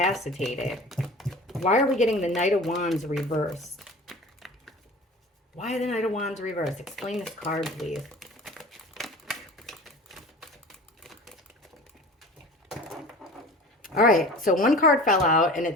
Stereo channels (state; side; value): normal; both; correlation 0.40